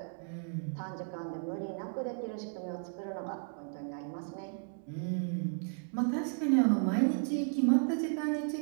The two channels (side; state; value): left; silent; 55 dB below the other